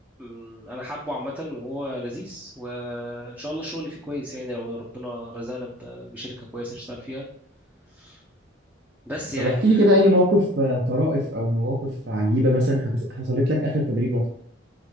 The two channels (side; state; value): both; normal; correlation 0.50